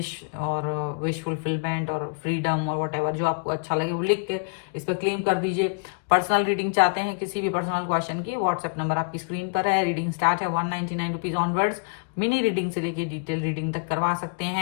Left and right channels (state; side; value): quieter; right; 38.0 dB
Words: और विश फुलफिलमेंट और फ्रीडम और व्हाटएवर जो आपको अच्छा लगे वो लिख के इस पर क्लेम कर दीजिए। पर्सनल रीडिंग चाहते हैं किसी भी पर्सनल क्वेश्चन की, व्हाट्सएप नंबर आपकी स्क्रीन पर है। रीडिंग स्टार्ट है 199 रुपीज ऑनवर्ड्स। मिनी रीडिंग से लेके डिटेल रीडिंग तक करवा सकते